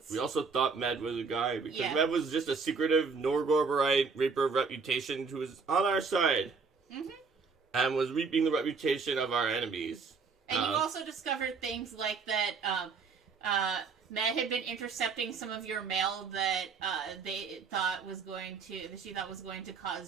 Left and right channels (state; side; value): quieter; left; 5.0 dB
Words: We also thought Med was a guy, because Med was just a secretive Norgorberite Reaper of Reputation who was on our side. Mm-hmm. And was reaping the reputation of our enemies. And you also discovered things like that Med had been intercepting some of your mail that she thought was going to